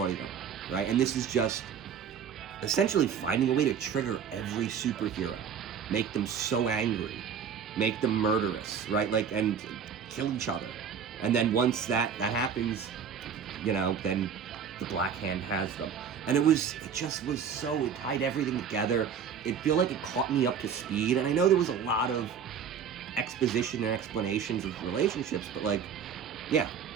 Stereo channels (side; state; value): left; quieter; 7.3 dB